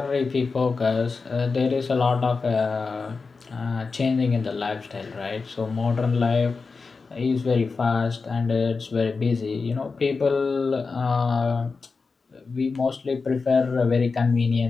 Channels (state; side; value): quieter; right; 4.5 dB